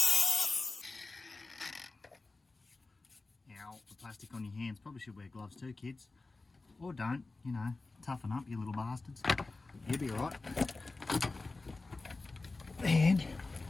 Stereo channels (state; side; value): quieter; right; 3.5 dB